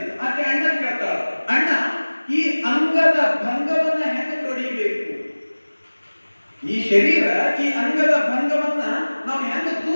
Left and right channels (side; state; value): both; inverted; correlation -1.00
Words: ಆಕೆ ಅಣ್ಣ ಕೇಳ್ತಾಳ, ಅಣ್ಣ ಈ ಅಂಗದ ಭಂಗವನ್ನ ಹೆಂಗ ತೊಡಿಬೇಕು? ಈ ಶರೀರ, ಈ ಅಂಗದ ಭಂಗವನ್ನ ನಾವು ಹೆಂಗ